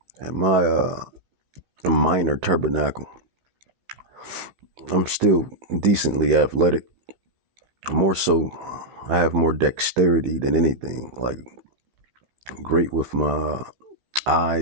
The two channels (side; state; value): left; late; 16 ms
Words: and my minor tabernacle, I'm still decently athletic. More so, I have more dexterity than anything. Like, great with my